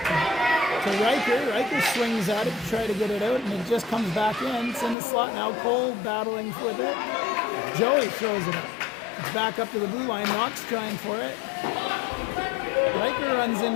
To Riker. Riker swings at it to try to get it out, and it just comes back in. It's in the slot now. Cole battling with it. Joey throws it up. It's back up to the blue line. Knox trying for it. Riker runs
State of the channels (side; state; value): right; drops out; at 5.0 s